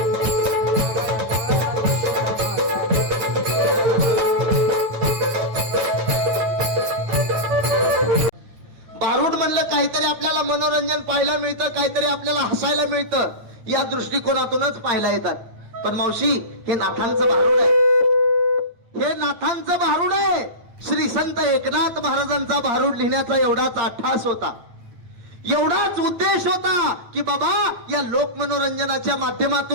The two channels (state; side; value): late; left; 9.1 ms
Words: भारूड म्हणलं काहीतरी आपल्याला मनोरंजन पाहायला मिळतं काहीतरी आपल्याला हसायला मिळतं या दृष्टिकोनातूनच पाहायला येतात पण मावशी हे नाथांचं भारूड आहे हे नाथांचं भारूड आहे श्री संत एकनाथ महाराजांचा भारूड लिहिण्याचा एवढाच अट्टास होता एवढाच उद्देश होता की बाबा या लोक मनोरंजनाच्या